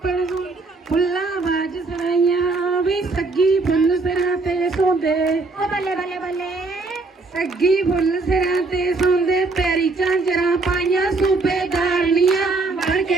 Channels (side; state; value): left; quieter; 3.6 dB